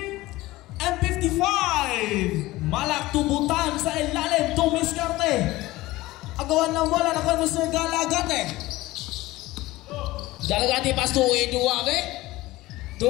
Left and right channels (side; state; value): right; quieter; 18.5 dB